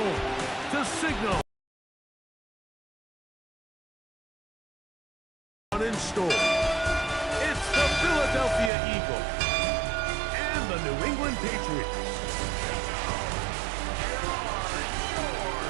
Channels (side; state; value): left; drops out; at 8.7 s